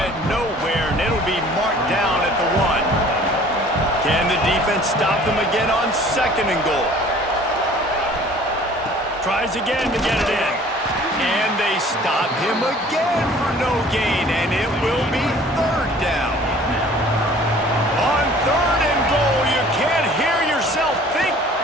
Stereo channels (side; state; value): both; normal; correlation 0.51